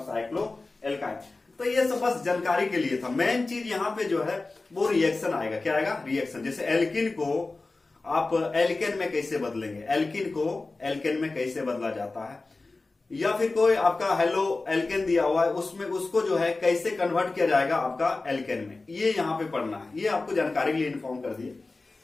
साइक्लो एल्काइन। तो ये सब बस जानकारी के लिए था। मेन चीज यहाँ पे जो है वो रिएक्शन आएगा। क्या आएगा? रिएक्शन। जैसे एल्किन को आप एल्केन में कैसे बदलेंगे, एल्किन को एल्केन में कैसे बदला जाता है, या फिर कोई आपका हेलो एल्केन दिया हुआ है उसमें उसको जो है कैसे कन्वर्ट किया जाएगा आपका एल्केन में, ये यहाँ पे पढ़ना है। ये आपको जानकारी के लिए इन्फॉर्म कर दिए।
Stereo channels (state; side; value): quieter; right; 3.4 dB